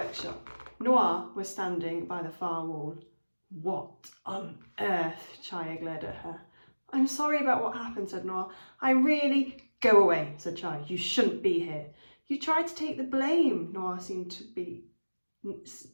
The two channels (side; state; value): both; inverted; correlation -1.00